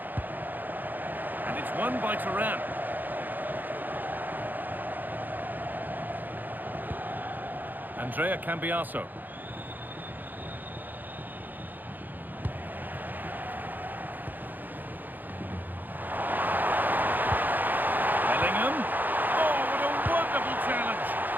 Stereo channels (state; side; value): late; left; 0.087 ms